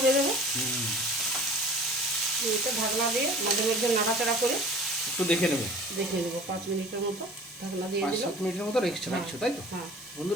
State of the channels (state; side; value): normal; both; correlation 0.44